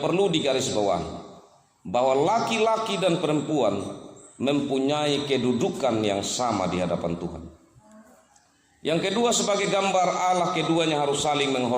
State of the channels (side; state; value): both; identical; correlation 1.00